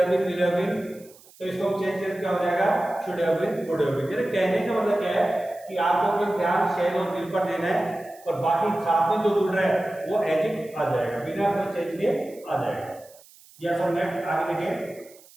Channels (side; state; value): right; noise; hiss, 25 dB below the sound